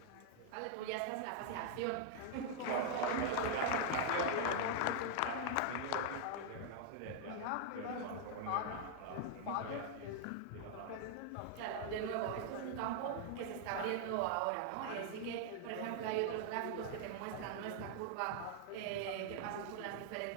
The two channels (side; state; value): both; different; correlation 0.00